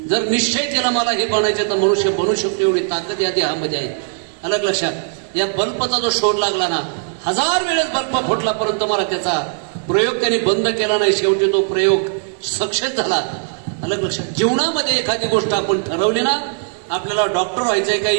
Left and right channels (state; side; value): silent; left; digital silence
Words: जर निश्चय केला मला हे बनायचं तर मनुष्य बनू शकतो एवढी ताकद या देहामध्ये आहे. अलग लक्षात. या बल्बचा जो शोध लागला ना, 1000 वेळेस बल्ब फुटला परंतु मला त्याचा प्रयोग त्यांनी बंद केला नाही. शेवटी तो प्रयोग सक्सेस झाला. अलग लक्षात. जीवनामध्ये एखादी गोष्ट आपण ठरवली ना, आपल्याला डॉक्टर व्हायचंय का